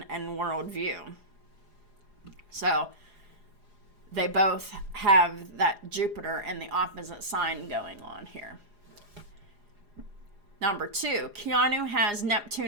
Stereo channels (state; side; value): late; left; 4.9 ms